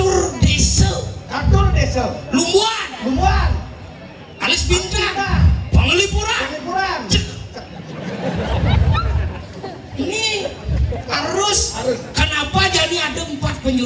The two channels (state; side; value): identical; both; correlation 1.00